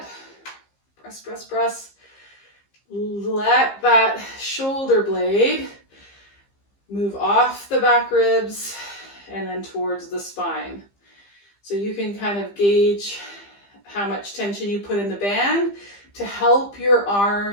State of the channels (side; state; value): right; late; 15 ms